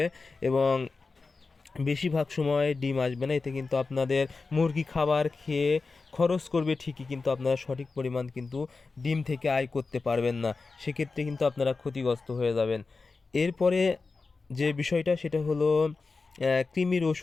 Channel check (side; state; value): right; quieter; 4.1 dB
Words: এবং বেশিরভাগ সময় ডিম আসবে না। এতে কিন্তু আপনাদের মুরগি খাবার খেয়ে খরচ করবে ঠিকই, কিন্তু আপনারা সঠিক পরিমাণ কিন্তু ডিম থেকে আয় করতে পারবেন না। সেক্ষেত্রে কিন্তু আপনারা ক্ষতিগ্রস্ত হয়ে যাবেন। এরপরে যে বিষয়টা সেটা হলো কৃমির